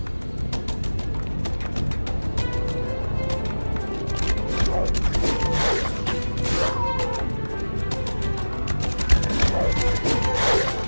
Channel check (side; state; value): both; inverted; correlation -1.00